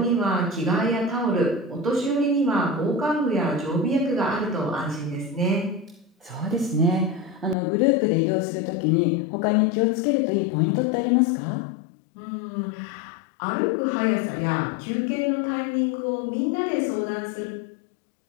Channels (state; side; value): drops out; right; at 7.6 s